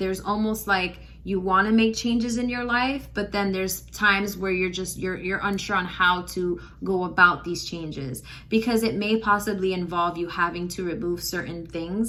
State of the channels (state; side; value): identical; both; correlation 1.00